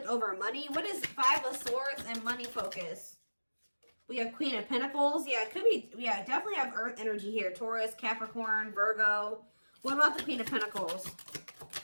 over money. What is Five of Swords and money focus? We have Queen of Pentacles. Yeah, it could be. Yeah, definitely have Earth energy here. Taurus, Capricorn, Virgo. What about the Queen of Pentacles?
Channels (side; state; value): both; inverted; correlation -1.00